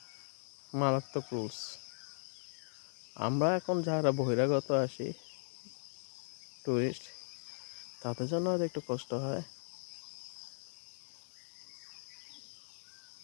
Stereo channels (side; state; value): right; silent; digital silence